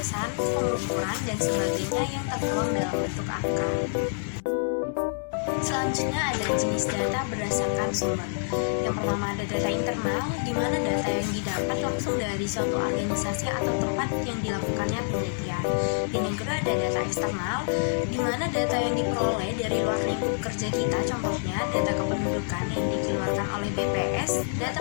pengukuran, dan sebagainya yang tertuang dalam bentuk angka. Selanjutnya ada jenis data berdasarkan sumber. Yang pertama ada data internal, di mana data yang didapat langsung dari suatu organisasi atau tempat yang dilakukannya penelitian. Dan yang kedua ada data eksternal, di mana data yang diperoleh dari luar lingkup kerja kita, contohnya data kependudukan yang dikeluarkan oleh BPS, data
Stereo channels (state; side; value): silent; right; 60 dB below the other